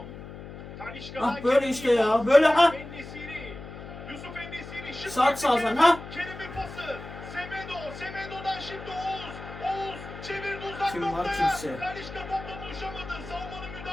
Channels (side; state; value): left; noise; hum, 12 dB below the sound